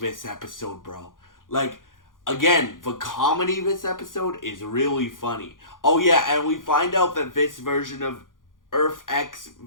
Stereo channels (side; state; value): right; late; 0.89 ms